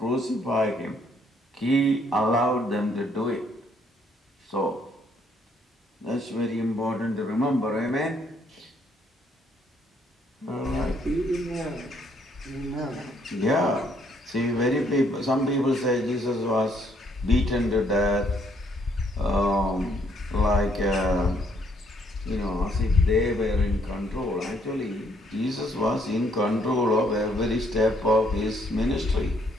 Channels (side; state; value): both; normal; correlation 0.68